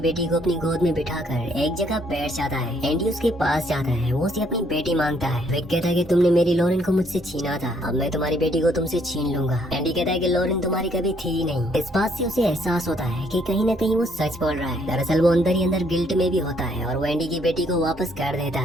बेटी को अपनी गोद में बिठाकर एक जगह बैठ जाता है। एंडी उसके पास जाता है, वो उसे अपनी बेटी मांगता है। विक कहता है कि तुमने मेरी लॉरेन को मुझसे छीना था, अब मैं तुम्हारी बेटी को तुमसे छीन लूंगा। एंडी कहता है कि लॉरेन तुम्हारी कभी थी ही नहीं। इस बात से उसे एहसास होता है कि कहीं न कहीं वो सच बोल रहा है। दरअसल वो अंदर ही अंदर गिल्ट में भी होता है और वो एंडी की बेटी को वापस कर देता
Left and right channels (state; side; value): normal; both; correlation 0.67